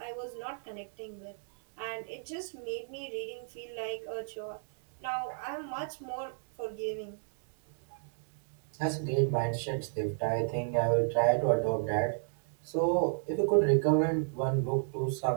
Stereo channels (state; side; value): silent; left; digital silence